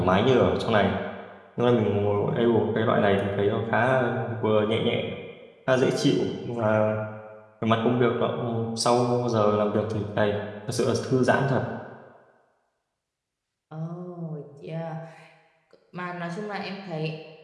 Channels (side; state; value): both; identical; correlation 1.00